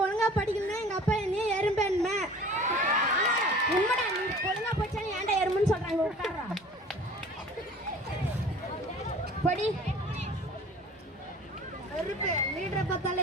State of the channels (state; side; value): normal; both; correlation 0.45